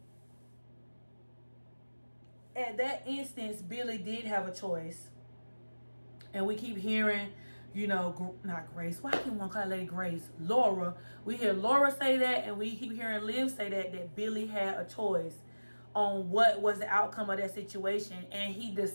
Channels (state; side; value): inverted; both; correlation -1.00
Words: at that instance, Billy did have a choice. And we keep hearing, you know, not Grace. Why can't one call Lady Grace? Laura. We hear Laura say that, and we keep hearing Liv say that Billy had a choice on what was the outcome of that situation. And he